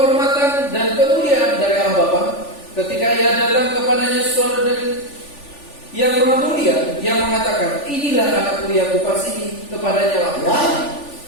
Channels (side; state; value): right; late; 3.4 ms